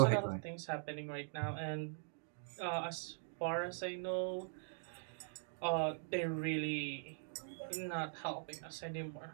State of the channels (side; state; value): left; silent; digital silence